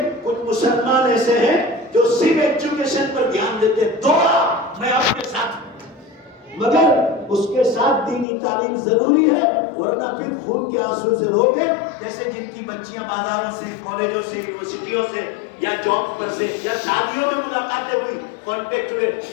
کچھ مسلمان ایسے ہیں جو صرف ایجوکیشن پر دھیان دیتے ہیں، دعا میں آپ کے ساتھ، مگر اس کے ساتھ دینی تعلیم ضروری ہے، ورنہ پھر خون کے آنسو سے روگے، جیسے جن کی بچیاں بازاروں سے، کالجوں سے، یونیورسٹیوں سے یا جاب پر سے یا شادیوں میں ملاقاتیں ہوئی، کانٹیکٹ ہوئے،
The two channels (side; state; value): right; drops out; at 8.2 s